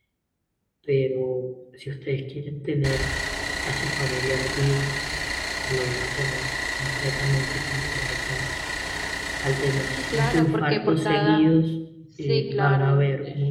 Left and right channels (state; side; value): identical; both; correlation 1.00